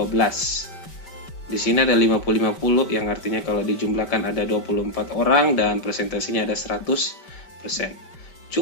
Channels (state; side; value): late; right; 5.2 ms